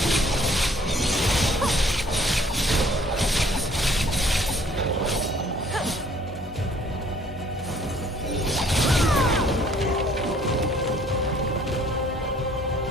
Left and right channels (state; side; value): normal; both; correlation 0.58